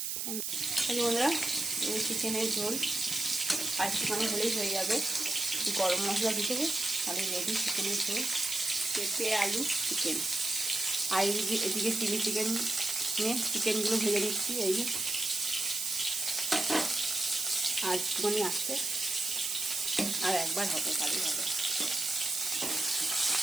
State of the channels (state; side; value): noise; right; hiss, 2 dB below the sound